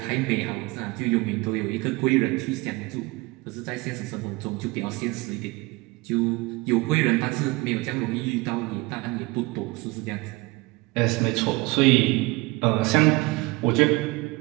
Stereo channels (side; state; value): left; quieter; 23.6 dB